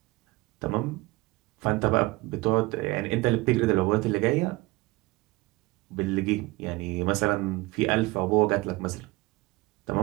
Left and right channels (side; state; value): left; quieter; 21.8 dB